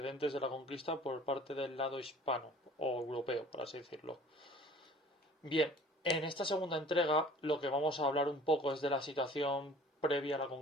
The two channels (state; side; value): normal; both; correlation 0.48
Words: de la conquista por parte del lado hispano o europeo, por así decirlo. Bien, en esta segunda entrega lo que vamos a hablar un poco es de la situación previa a la